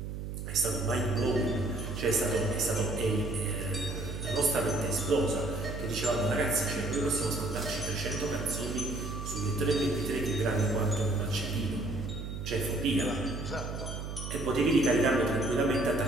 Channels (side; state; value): right; noise; hum, 6 dB below the sound